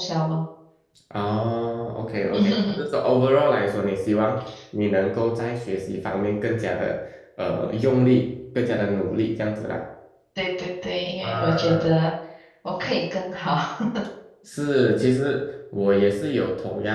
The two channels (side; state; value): both; identical; correlation 1.00